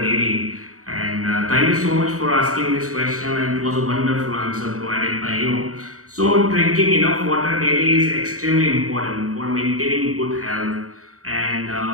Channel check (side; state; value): left; late; 0.65 ms